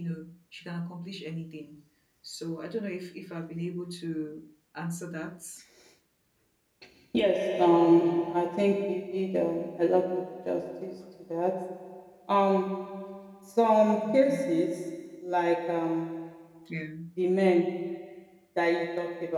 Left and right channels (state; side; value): identical; both; correlation 1.00